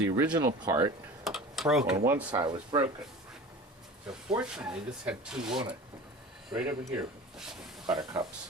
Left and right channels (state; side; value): normal; both; correlation 0.37